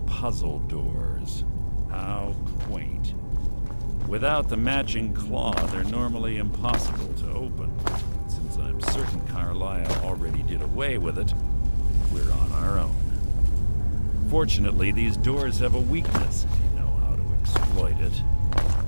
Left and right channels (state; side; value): inverted; both; correlation -1.00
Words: puzzle doors. How quaint. Without the matching claw, they're normally impossible to open. Since I'm certain Carlisle already did away with it, we're on our own. Fortunately, these doors have a weakness if you know how to exploit it.